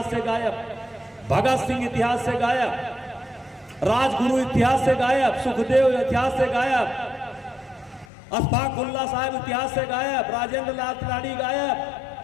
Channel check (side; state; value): right; drops out; at 8.1 s